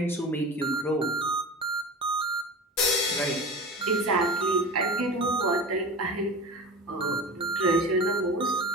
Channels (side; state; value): both; normal; correlation 0.32